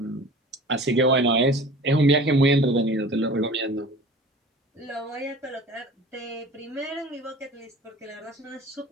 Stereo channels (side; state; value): both; normal; correlation 0.42